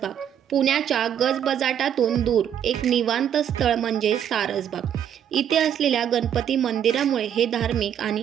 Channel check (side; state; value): left; quieter; 9.4 dB